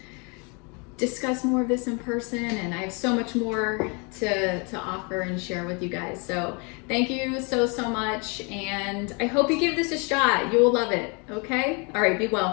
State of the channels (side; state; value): right; quieter; 32.6 dB